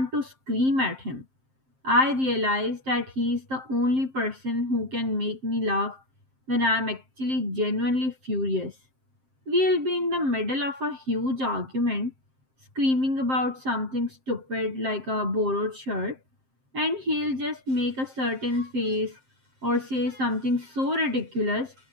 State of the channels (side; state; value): left; late; 7.6 ms